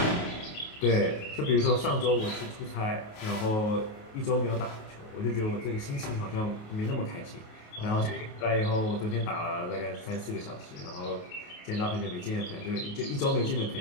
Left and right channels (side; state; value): right; late; 28 ms